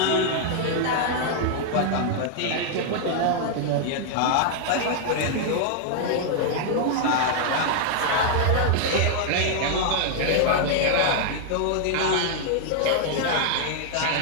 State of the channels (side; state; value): both; different; correlation 0.00